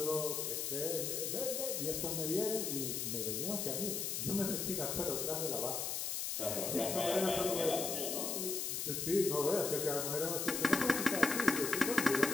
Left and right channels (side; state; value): left; noise; hiss, 2 dB below the sound